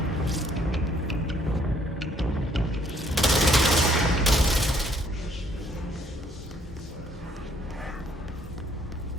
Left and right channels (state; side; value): normal; both; correlation 0.66